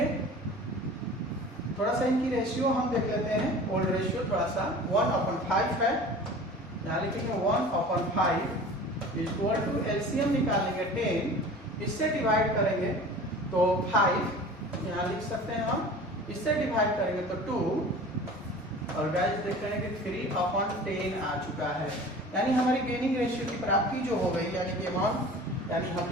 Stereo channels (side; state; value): both; normal; correlation 0.40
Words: थोड़ा सा इनकी रेशियो हम देख लेते हैं, ओल्ड रेशियो थोड़ा सा 1/5 है, यहाँ लिखेंगे 1/5 इक्वल टू एलसीएम निकालेंगे 10, इससे डिवाइड करेंगे तो 5 यहाँ लिख सकते हैं हम, इससे डिवाइड करेंगे तो 2 और गाइस देख रहे हैं कि 3/10 आ चुका है। यानी हमारी गेनिंग रेशियो की प्राप्ति जो हो गई, यानी कि अमाउंट, यानी हम